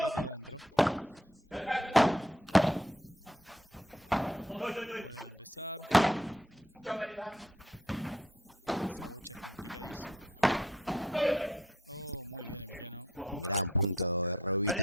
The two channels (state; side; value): normal; both; correlation 0.66